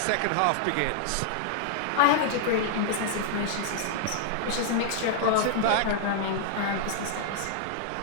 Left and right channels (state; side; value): different; both; correlation -0.01